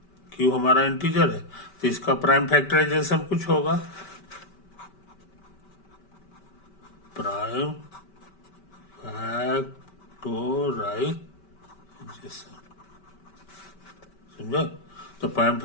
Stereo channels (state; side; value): late; right; 5.2 ms